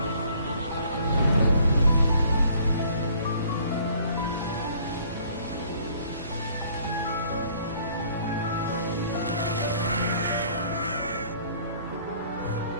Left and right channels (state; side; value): inverted; both; correlation -0.58